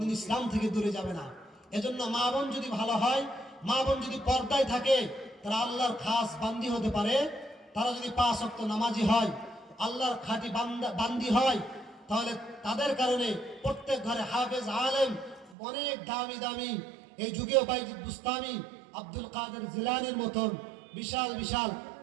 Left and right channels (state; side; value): drops out; left; at 15.6 s